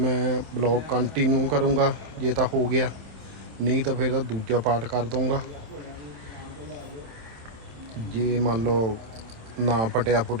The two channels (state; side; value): late; left; 27 ms